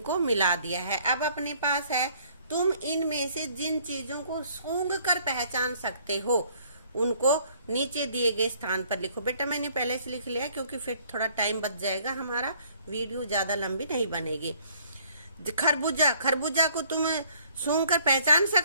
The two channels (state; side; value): inverted; both; correlation -0.61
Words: मिला दिया है। अब अपने पास है, तुम इनमें से जिन चीजों को सूंघ कर पहचान सकते हो उनको नीचे दिए गए स्थान पर लिखो। बेटा मैंने पहले से लिख लिया क्योंकि फिर थोड़ा टाइम बच जाएगा, हमारा वीडियो ज्यादा लंबी नहीं बनेगी। खरबूजा, खरबूजा को तुम सूंघ कर पहचान